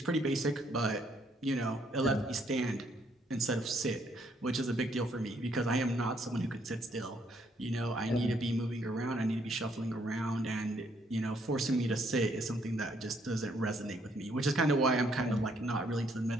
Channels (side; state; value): both; normal; correlation 0.69